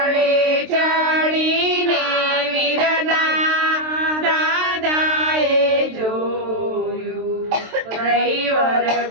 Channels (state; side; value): late; left; 23 ms